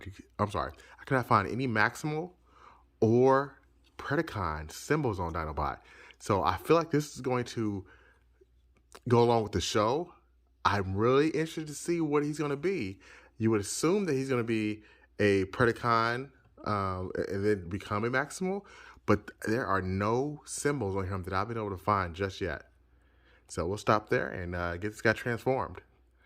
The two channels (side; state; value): both; identical; correlation 1.00